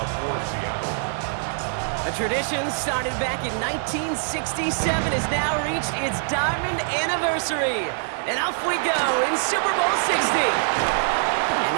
for Seattle. A tradition started back in 1967 has now reached its diamond anniversary. And off we go in Super Bowl 60. And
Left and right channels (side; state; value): left; silent; digital silence